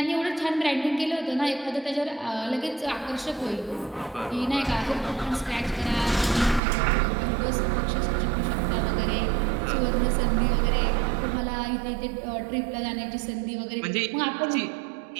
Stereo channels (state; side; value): drops out; left; at 6.6 s